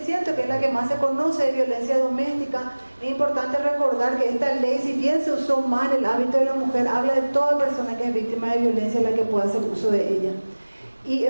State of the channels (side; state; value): both; inverted; correlation -1.00